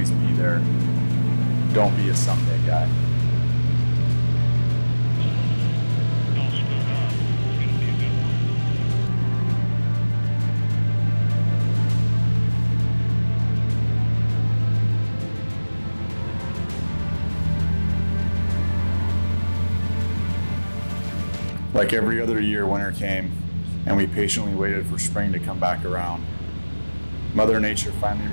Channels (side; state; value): both; inverted; correlation -1.00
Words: be there. Don't be a someday guy. Like every other year, winter came, and we patiently waited for spring to come back around. Mother Nature finally